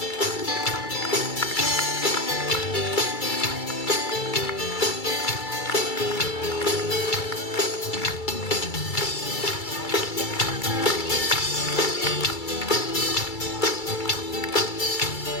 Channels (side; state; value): right; late; 2.3 ms